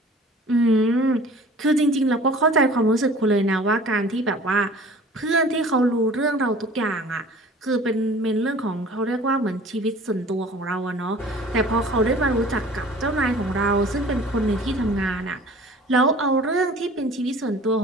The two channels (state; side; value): normal; both; correlation 0.46